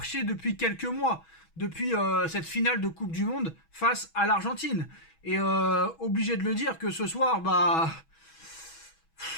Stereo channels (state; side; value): late; right; 6.2 ms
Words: depuis quelques mois, depuis cette finale de Coupe du Monde face à l'Argentine. Et obligé de le dire que ce soir,